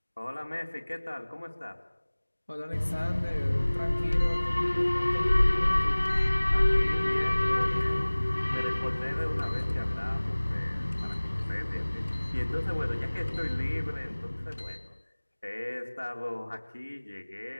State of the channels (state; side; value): inverted; both; correlation -1.00